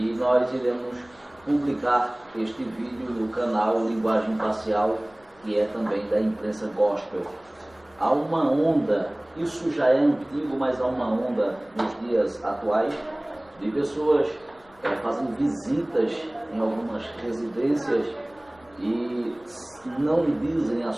nós iremos publicar este vídeo no canal Linguagem Imparcial, que é também da Imprensa Gospel. Há uma onda, isso já é antigo, mas há uma onda nos dias atuais de pessoas fazendo visitas em algumas residências e não dizem a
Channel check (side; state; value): left; noise; rumble, 29 dB below the sound